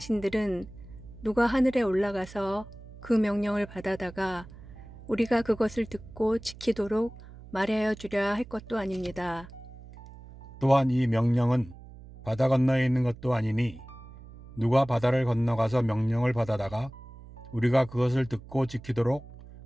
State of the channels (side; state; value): right; noise; hum, 18 dB below the sound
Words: 누가 하늘에 올라가서 그 명령을 받아다가 우리가 그것을 듣고 지키도록 말하여 주랴 할 것도 아닙니다. 또한 이 명령은 바다 건너에 있는 것도 아니니 누가 바다를 건너가서 명령을 받아다가 우리가 그것을 듣고 지키도록